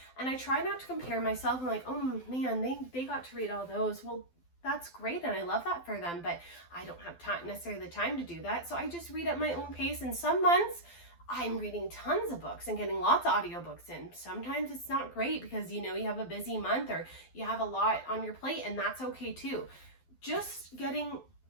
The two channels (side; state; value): right; late; 12 ms